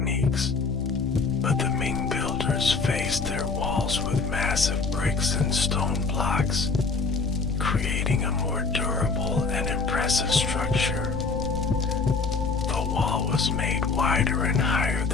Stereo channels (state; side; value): quieter; right; 4.4 dB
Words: but the Ming builders faced their walls with massive bricks and stone blocks, creating a more durable and impressive structure. The wall was made wider and higher